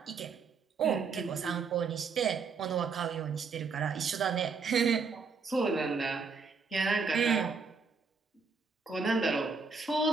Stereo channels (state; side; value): quieter; left; 5.0 dB